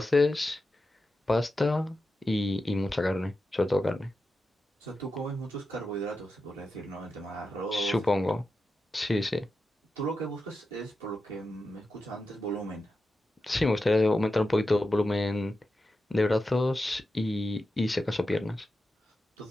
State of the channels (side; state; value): both; normal; correlation 0.90